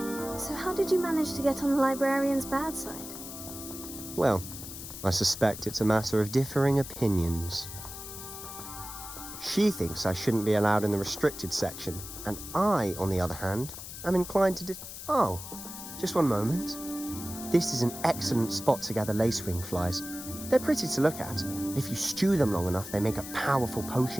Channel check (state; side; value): noise; left; hiss, 11 dB below the sound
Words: So how did you manage to get on the librarian's bad side? Well, I suspect it's a matter of differing opinions. She thinks I shouldn't be allowed in the restricted section, and I, on the other hand, am inclined to Oh, just one moment. This is an excellent spot to gather lacewing flies. They're pretty to look at. If you stew them long enough, they make a powerful